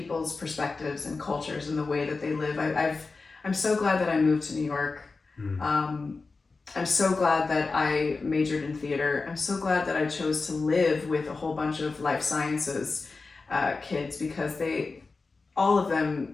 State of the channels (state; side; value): quieter; right; 4.0 dB